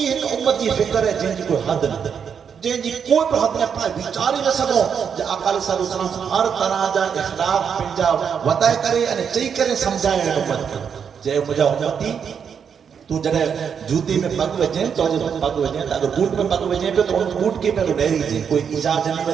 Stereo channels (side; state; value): left; quieter; 7.1 dB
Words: ایک امت کی فکر ہے جن کی کوئی حد نہ جن کی کوئی پر حد نہ پائے بیچاری نہ سکو جو آقا علیہ السلام ہر طرح جا اخلاق پنجا وطائے کرے انہیں چاہی کرے سمجھائے امت کے جائے مجھا امتی تو جنہیں جوتی میں پگ وجہیں تو جب پگ وجہیں اگر بوٹ میں پگ وجہیں پہ تو ان بوٹ کے پہلو ڈیری جی کوئی ایجاد جنی